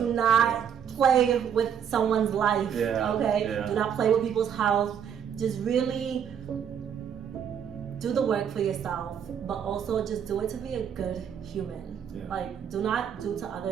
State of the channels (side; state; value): left; quieter; 8.2 dB